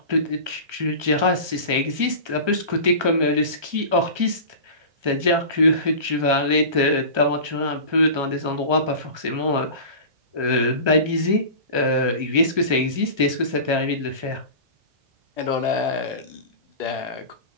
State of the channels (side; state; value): left; late; 1.3 ms